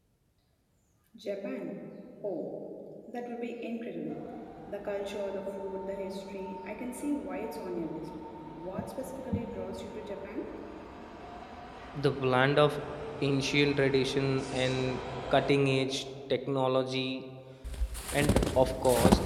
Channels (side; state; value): both; identical; correlation 1.00